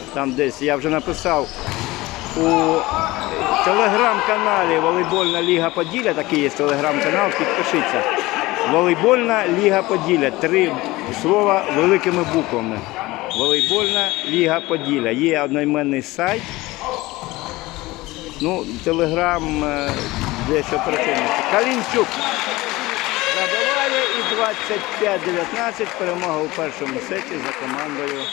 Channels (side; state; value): right; quieter; 19.8 dB